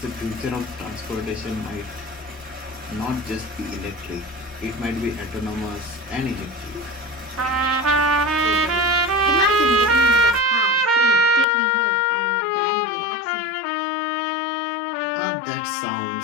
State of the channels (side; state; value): right; drops out; at 11.5 s